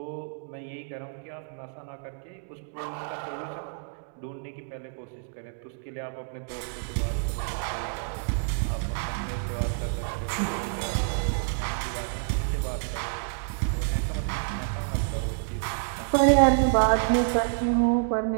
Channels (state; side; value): silent; left; digital silence